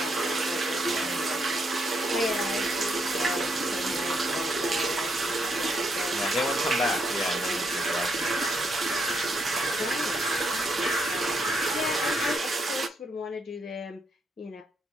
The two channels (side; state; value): both; normal; correlation 0.77